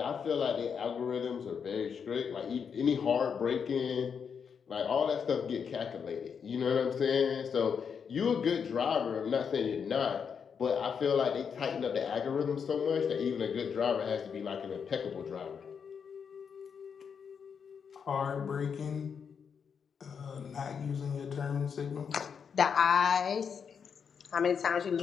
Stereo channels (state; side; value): quieter; right; 6.7 dB